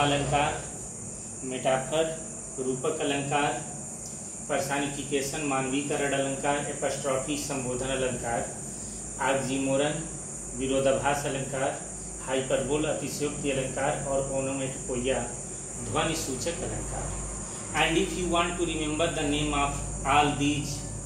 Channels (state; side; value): identical; both; correlation 1.00